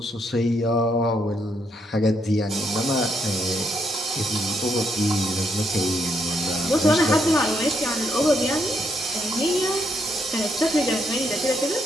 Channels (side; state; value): both; normal; correlation 0.76